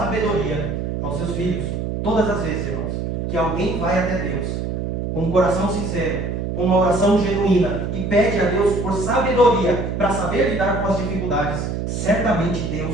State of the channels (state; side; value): noise; right; hum, 3 dB below the sound